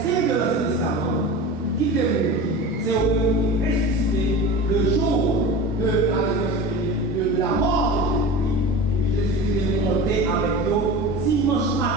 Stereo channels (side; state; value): both; normal; correlation 0.32